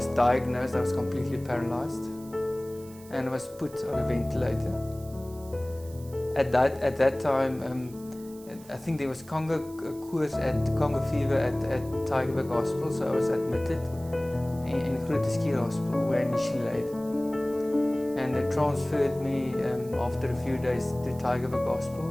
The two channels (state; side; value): noise; right; hiss, 22 dB below the sound